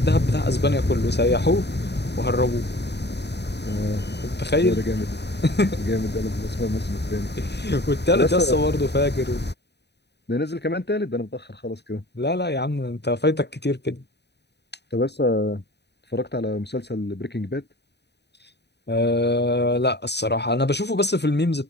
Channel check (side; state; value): right; late; 0.49 ms